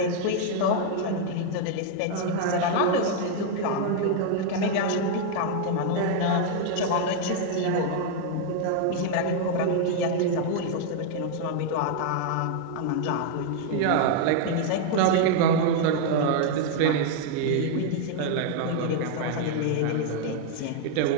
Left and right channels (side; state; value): both; different; correlation 0.00